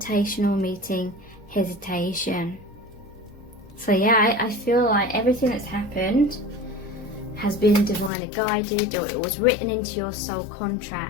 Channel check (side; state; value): right; drops out; at 8.1 s